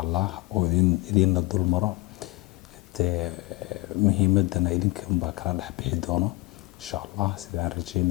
الله وإذن الدول مرة مهمتنا إذن كم بكرة نحبي دونه إن شاء الله سيدان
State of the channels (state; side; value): quieter; right; 22.9 dB